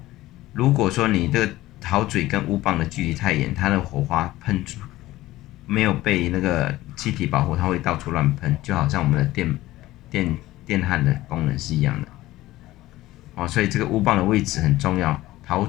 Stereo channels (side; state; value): right; quieter; 16.8 dB